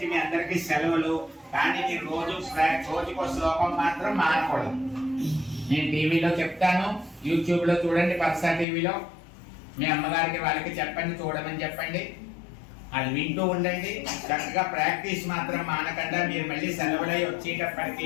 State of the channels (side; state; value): right; drops out; at 8.7 s